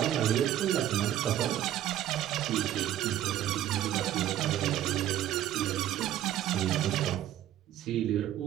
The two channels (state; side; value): quieter; left; 12.1 dB